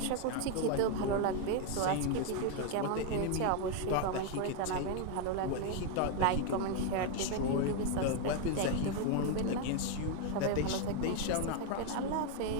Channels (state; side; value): different; both; correlation 0.01